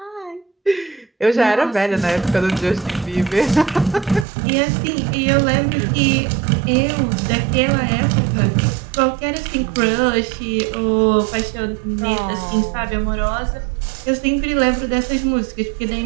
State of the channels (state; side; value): drops out; left; at 4.2 s